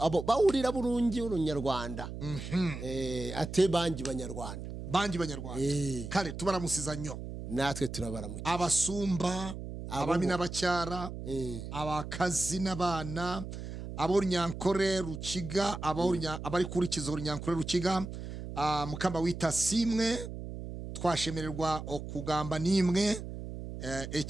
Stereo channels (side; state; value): right; noise; hum, 8 dB below the sound